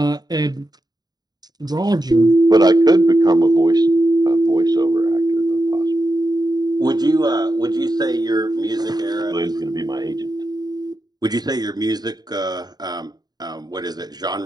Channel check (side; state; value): left; late; 0.19 ms